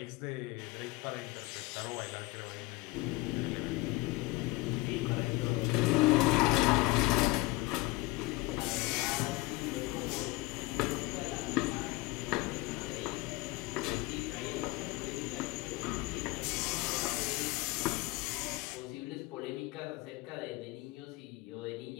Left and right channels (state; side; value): quieter; right; 20.7 dB